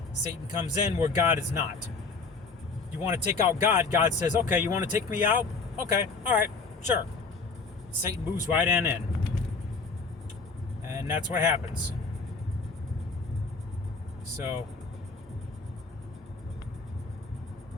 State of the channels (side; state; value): right; quieter; 4.3 dB